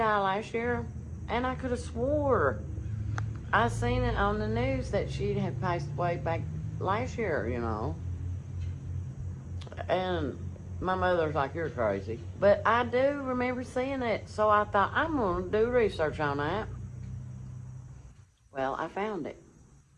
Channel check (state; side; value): identical; both; correlation 1.00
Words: last year? And I could have swore I seen it on the news that she had passed away back last year, you know. And my mother's like, you're crazy. But I do remember seeing it, so I thought, I'm going to do research on that. Well, I found it.